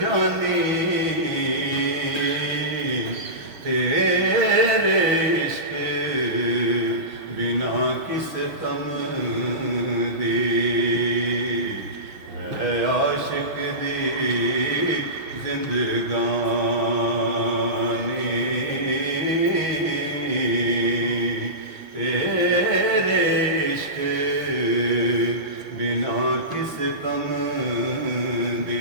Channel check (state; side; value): late; left; 6.2 ms